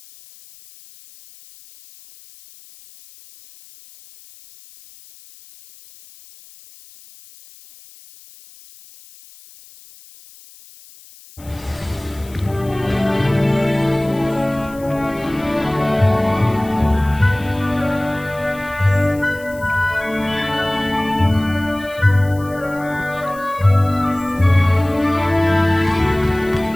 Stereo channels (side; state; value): left; noise; hiss, 23 dB below the sound